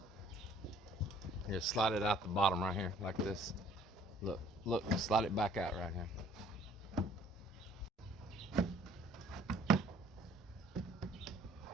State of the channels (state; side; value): normal; both; correlation 0.57